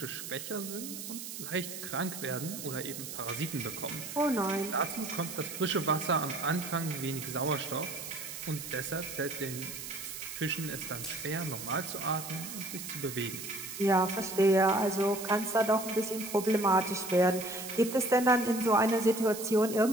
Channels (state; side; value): noise; right; hiss, 9 dB below the sound